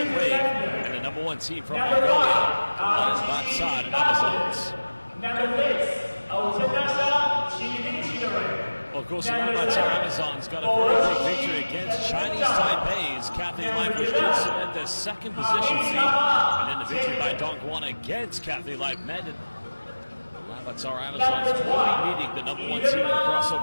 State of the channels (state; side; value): inverted; both; correlation -1.00